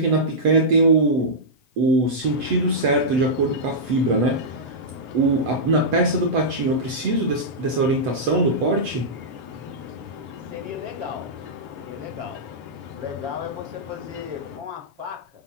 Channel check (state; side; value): late; left; 8.0 ms